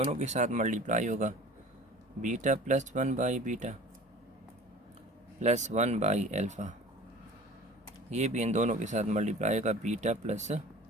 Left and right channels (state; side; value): normal; both; correlation 0.43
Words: के साथ मल्टीप्लाई होगा, बीटा प्लस 1/β प्लस 1/α, ये भी इन दोनों के साथ मल्टीप्लाई होगा, beta plus